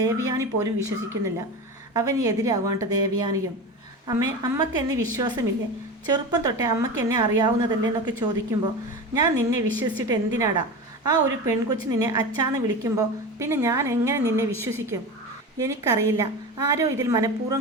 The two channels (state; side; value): normal; both; correlation 0.27